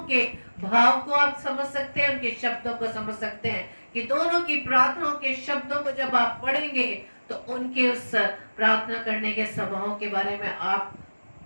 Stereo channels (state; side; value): inverted; both; correlation -1.00